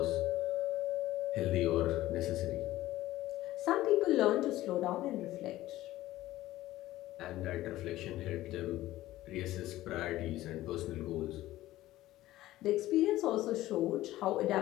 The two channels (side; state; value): right; quieter; 15.8 dB